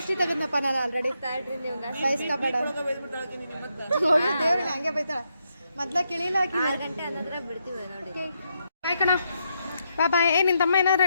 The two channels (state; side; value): inverted; both; correlation -0.80